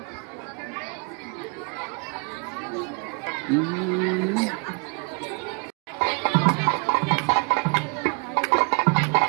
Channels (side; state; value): left; quieter; 33.8 dB